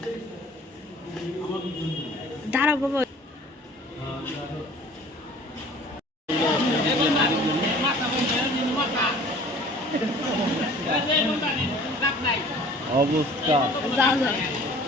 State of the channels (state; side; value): normal; both; correlation 0.49